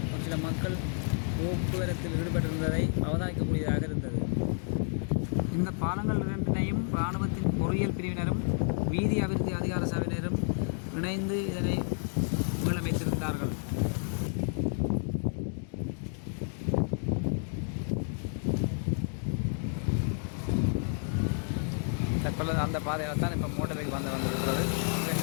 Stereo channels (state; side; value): silent; right; 57 dB below the other